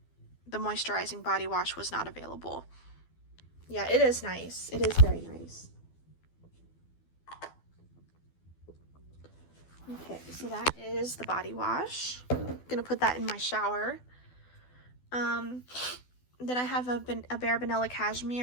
moisturizing body wash was not available. Yeah, it is nice. It is very nice. Okay, so that is the body wash. I'm gonna put that in my shower. Then I have a Bare Vanilla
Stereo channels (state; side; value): late; right; 12 ms